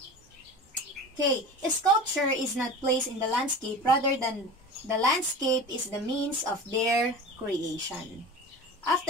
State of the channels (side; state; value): both; normal; correlation 0.34